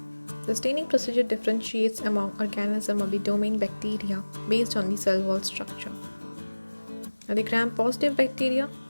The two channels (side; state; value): both; inverted; correlation -1.00